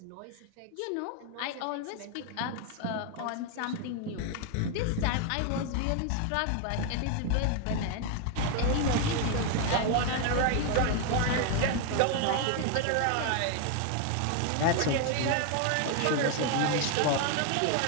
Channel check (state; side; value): different; both; correlation 0.01